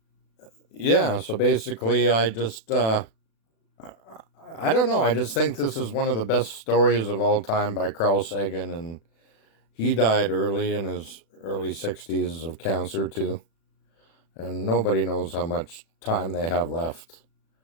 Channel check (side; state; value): right; late; 36 ms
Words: Yeah, so basically I just, I don't know. I just think this is one of the best stories of all time by Carl Sagan, and he died early in his early 60s of cancer too. And nobody knows how much time they have left.